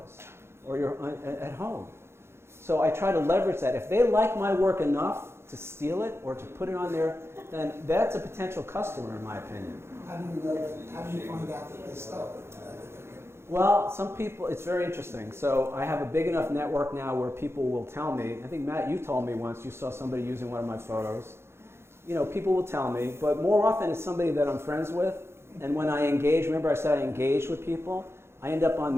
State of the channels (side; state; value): left; late; 0.12 ms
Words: or at home. So I try to leverage that. If they like my work enough to steal it or to put it on there, then that's a potential customer in my opinion. How do you know, how do you find out that they stole it? Well, some people, it's very interesting. So I have a big enough network now where people will tell me, I think Matt, you told me once you saw somebody using one of my photos. You know, people will tell me, but more often it's somebody that I'm friends with. And when I engage, remember I said I engage with people, I end up on